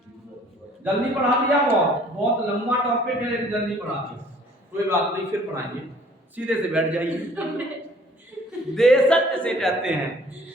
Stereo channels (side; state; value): both; normal; correlation 0.55